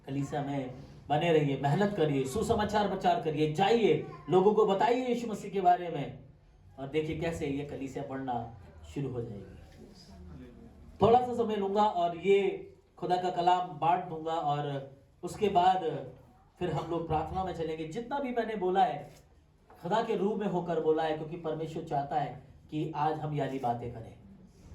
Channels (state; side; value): identical; both; correlation 1.00